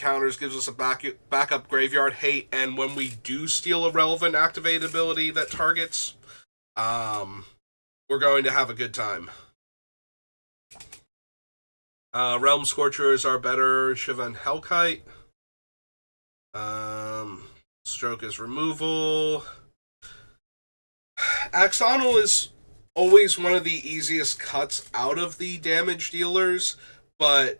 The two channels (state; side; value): inverted; both; correlation -1.00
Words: gives us a backup graveyard hate, and when we do steal a relevant activate ability that targets, we're going to have a good time. Realm Scorcher is our better Shiva and Hellkite. Stroke is removal. Axonal is always one of the easiest cuts out of the damage dealers, but